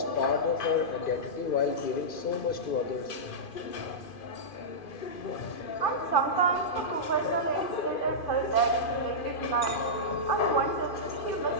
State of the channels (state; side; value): late; right; 2.5 ms